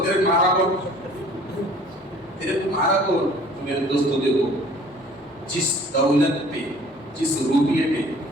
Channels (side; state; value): both; normal; correlation 0.51